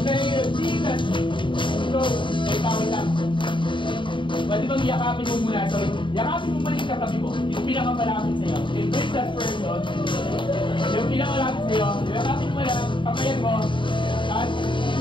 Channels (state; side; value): late; right; 0.24 ms